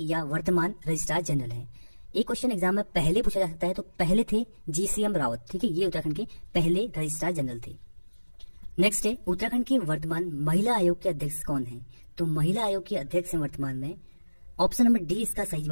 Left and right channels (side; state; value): both; inverted; correlation -1.00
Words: या वर्तमान रजिस्ट्रार जनरल है। एक क्वेश्चन एग्जाम में पहले पूछा जा सकता है, तो पहले थे GCM रावत। ठीक है, ये उत्तराखंड के पहले रजिस्ट्रार जनरल थे। नेक्स्ट है उत्तराखंड के वर्तमान महिला आयोग के अध्यक्ष कौन है? तो महिला आयोग के अध्यक्ष हैं वर्तमान में, ऑप्शन नंबर डी इसका सही